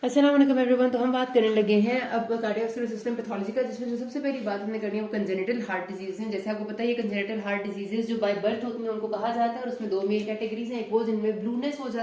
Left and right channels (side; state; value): both; identical; correlation 1.00